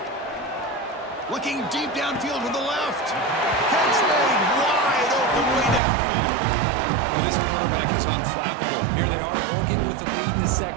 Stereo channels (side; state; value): left; drops out; at 5.8 s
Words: Looking deep downfield to the left. Catch made wide open way downfield. Well, this quarterback is unflappable. Here they are working with the lead in the